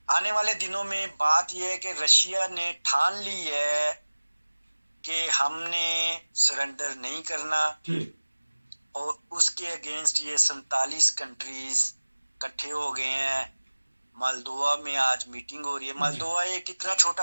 आने वाले दिनों में बात यह है कि रशिया ने ठान ली है कि हमने सरेंडर नहीं करना। ठीक। और उसके अगेंस्ट ये 47 कंट्रीज इकट्ठे हो गए हैं। मालदोवा में आज मीटिंग हो रही है। मालदोवा एक इतना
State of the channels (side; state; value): both; inverted; correlation -1.00